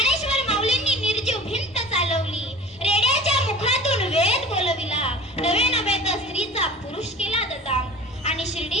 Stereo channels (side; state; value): both; normal; correlation 0.41